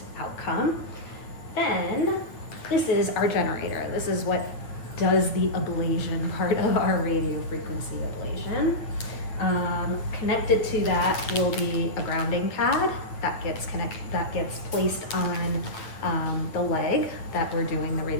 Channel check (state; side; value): late; right; 9.0 ms